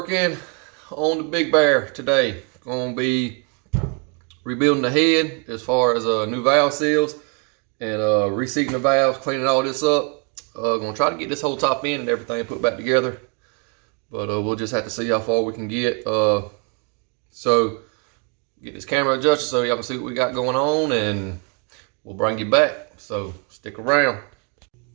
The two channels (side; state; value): left; quieter; 36.4 dB